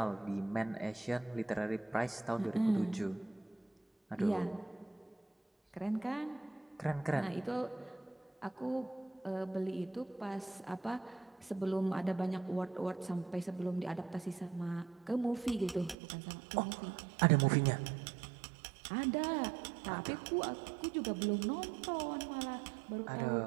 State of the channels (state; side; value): drops out; left; at 16.0 s